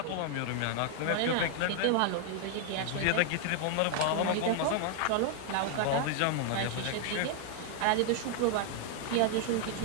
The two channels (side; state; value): both; different; correlation 0.00